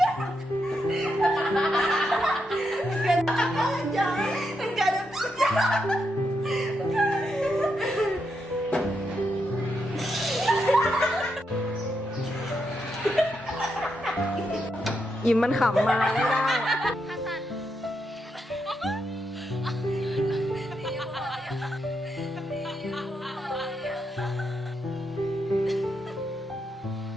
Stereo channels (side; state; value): both; normal; correlation 0.82